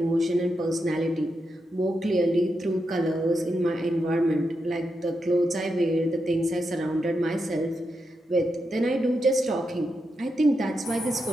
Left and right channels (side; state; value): both; normal; correlation 0.85